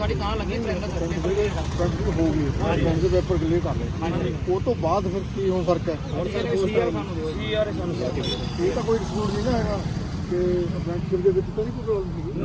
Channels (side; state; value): both; identical; correlation 1.00